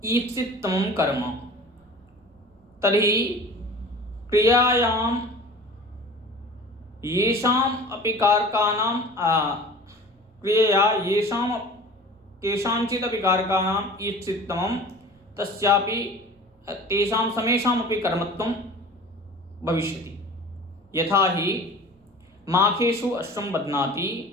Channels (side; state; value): both; normal; correlation 0.40